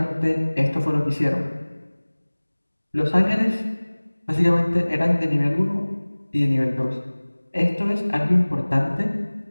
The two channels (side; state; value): both; inverted; correlation -1.00